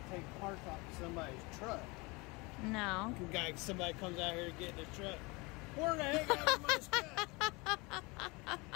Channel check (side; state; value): right; quieter; 26.0 dB